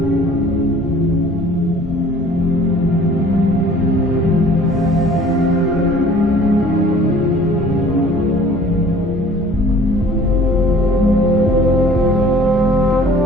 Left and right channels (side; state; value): both; normal; correlation 0.51